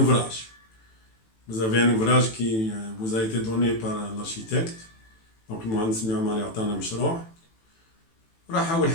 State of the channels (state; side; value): late; right; 18 ms